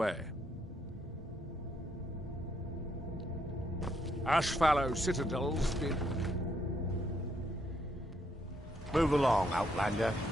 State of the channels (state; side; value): normal; both; correlation 0.74